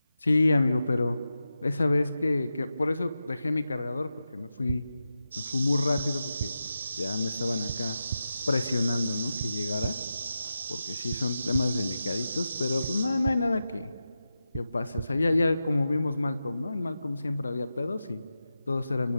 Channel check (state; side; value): inverted; both; correlation -0.91